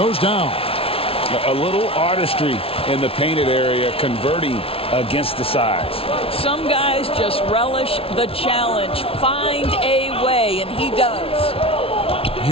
down. A little artistry in the painted area, converting against the size. Some guys just relish the challenge. Find a way, and he does.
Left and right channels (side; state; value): right; late; 0.27 ms